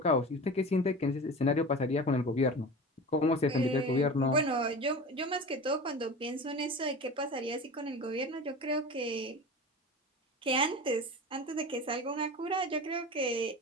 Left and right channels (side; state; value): both; normal; correlation 0.32